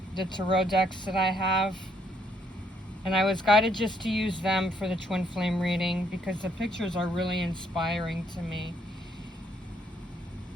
the tarot decks that I have, and I was guided just to use them for the Twin Flame reading because the pictures are really inspiring to me.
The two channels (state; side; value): normal; both; correlation 0.71